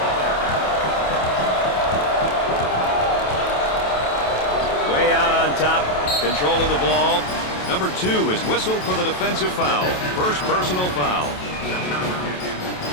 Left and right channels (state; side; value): late; right; 28 ms